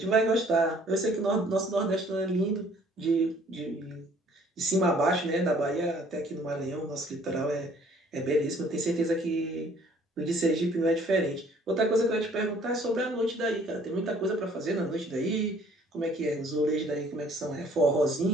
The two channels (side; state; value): both; normal; correlation 0.58